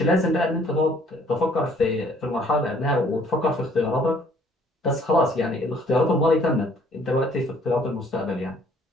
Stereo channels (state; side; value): normal; both; correlation 0.60